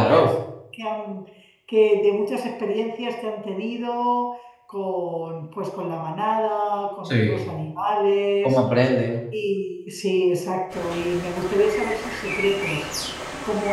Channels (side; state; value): both; identical; correlation 1.00